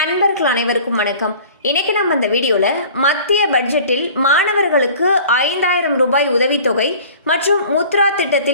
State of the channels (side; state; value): both; inverted; correlation -0.46